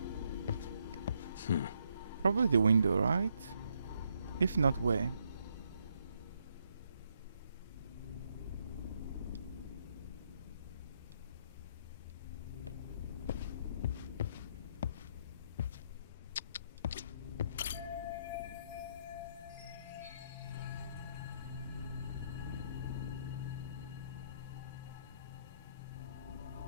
Probably the window, right? If not, where?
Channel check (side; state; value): both; inverted; correlation -0.74